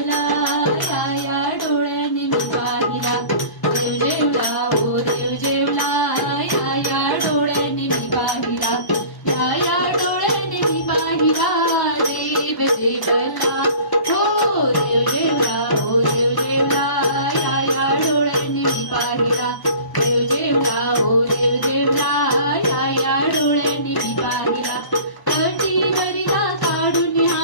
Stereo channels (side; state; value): right; late; 1.0 ms